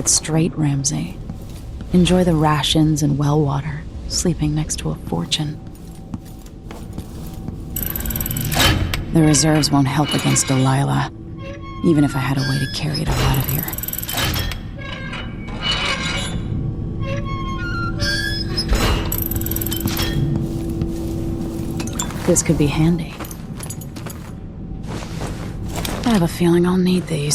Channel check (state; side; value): identical; both; correlation 1.00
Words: straight, Ramsey. Enjoy the rations and well water, sleeping next to a fortune. The reserves won't help against Delilah, even if I had a way to carry it all out of here. This could be handy. I have a feeling I'll need